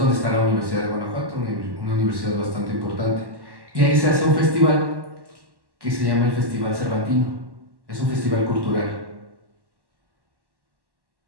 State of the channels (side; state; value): left; late; 1.1 ms